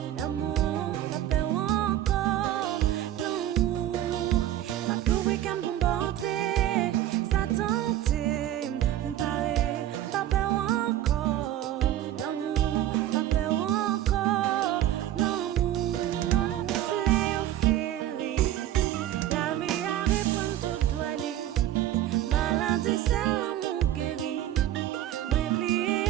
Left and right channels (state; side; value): quieter; left; 12.6 dB